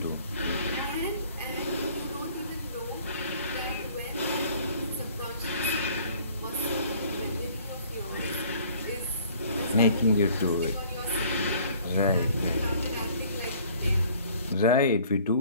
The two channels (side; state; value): both; inverted; correlation -0.55